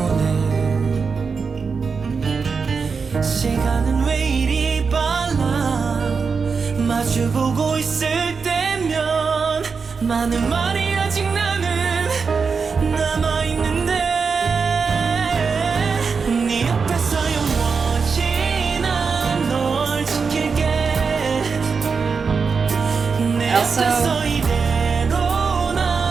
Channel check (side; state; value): left; quieter; 5.2 dB